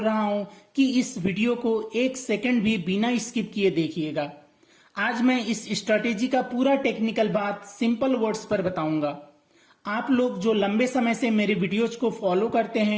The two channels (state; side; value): identical; both; correlation 1.00